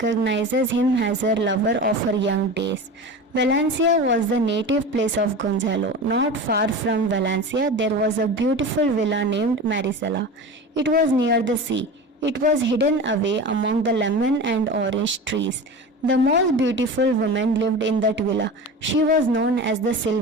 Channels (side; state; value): both; normal; correlation 0.31